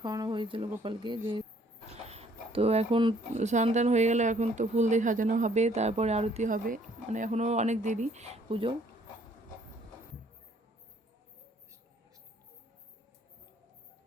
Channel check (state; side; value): normal; both; correlation 0.62